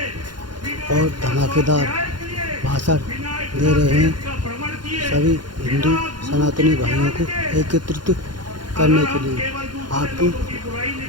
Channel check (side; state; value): left; late; 0.71 ms